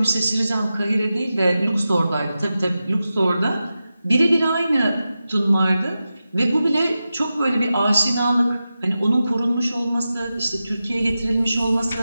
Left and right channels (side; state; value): both; inverted; correlation -0.92